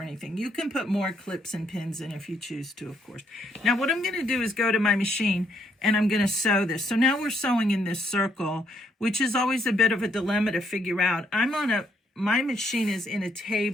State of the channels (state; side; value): normal; both; correlation 0.72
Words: anything. You can put more clips and pins in if you choose to, of course. Now what I'm going to do is go to my machine and I'm going to sew this. So now we're sewing in this circle, which is always a bit of a dilemma to figure out. My machine is in a